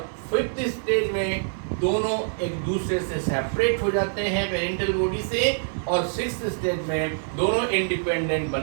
फिफ्थ स्टेज में दोनों एक दूसरे से सेपरेट हो जाते हैं पेरेंटल बॉडी से, और सिक्स्थ स्टेज में दोनों इंडिपेंडेंट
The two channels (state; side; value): silent; left; 58 dB below the other